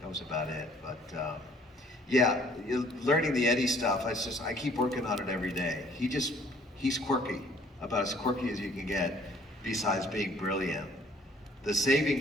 was about it. But yeah, learning the Eddie stuff, I keep working on it every day. He's quirky, about as quirky as you can get, besides being brilliant. The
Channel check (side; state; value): both; normal; correlation 0.58